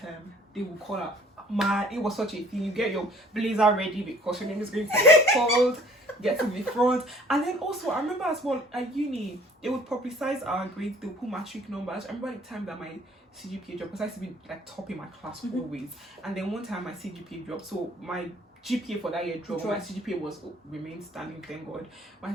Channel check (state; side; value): normal; both; correlation 0.54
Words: they would call up. Man, it was such a thing. You get your blazer ready because your name is going to be called, get to the front. And then also, I remember as well, at uni, they would publicize our grades, they would put matric numbers. I remember the time that my CGPA dropped, because I used to be like top in my class always. And then one time my CGPA dropped, so my GPA for that year dropped. My CGPA was remained standing, thank God. My